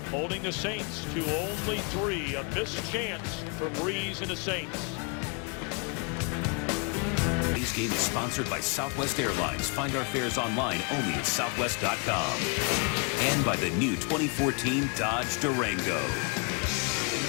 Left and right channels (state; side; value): quieter; right; 35.0 dB